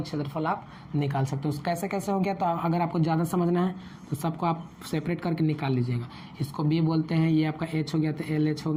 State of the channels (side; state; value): both; identical; correlation 1.00